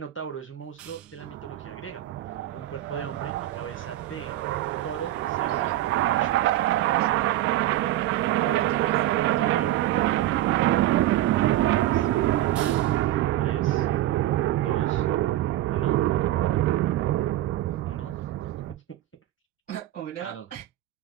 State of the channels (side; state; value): left; quieter; 14.3 dB